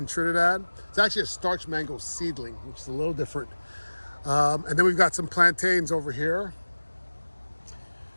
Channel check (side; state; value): both; inverted; correlation -1.00